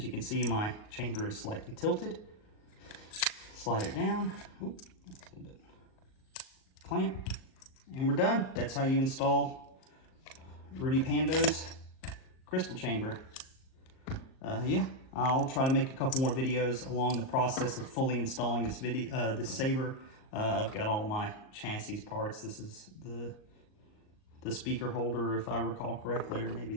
you can see, my chamber is slightly tilted. Slide it down. Oop, that's a little bit. Clamp. And we're done. That's how you install Rudy Pando's crystal chamber. Yeah, I'll try to make a couple more videos along the process of fully installing this saber. I've got all my chassis parts. This is the speaker holder, if I recall correctly, or maybe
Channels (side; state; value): right; late; 38 ms